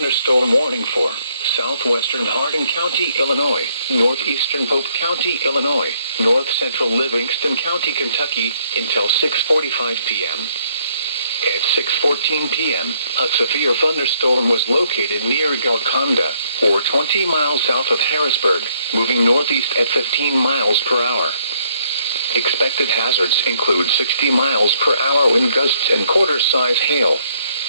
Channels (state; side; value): inverted; both; correlation -0.69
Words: warning for southwestern Hardin County, Illinois, northeastern Pope County, Illinois, north-central Livingston County, Kentucky, until 6:45 p.m. At 6:14 p.m., a severe thunderstorm was located near Golconda, or 20 miles south of Harrisburg, moving northeast at 15 miles per hour. Expected hazards include 60 miles per hour wind gusts and quarter-size hail.